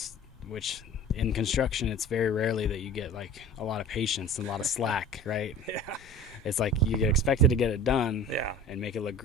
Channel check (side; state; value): both; normal; correlation 0.41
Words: which in construction it's very rarely that you get like a lot of patience and a lot of slack, right? Yeah. It's like you get expected to get it done and make it look